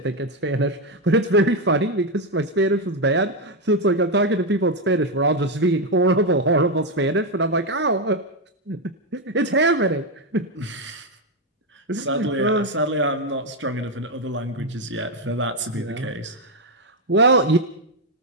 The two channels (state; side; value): normal; both; correlation 0.05